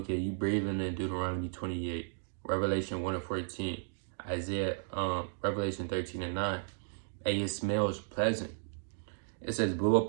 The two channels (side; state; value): left; silent; digital silence